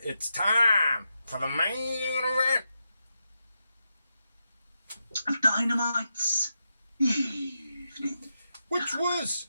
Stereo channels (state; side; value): inverted; both; correlation -0.87